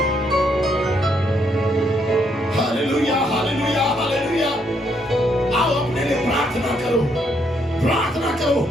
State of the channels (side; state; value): both; normal; correlation 0.73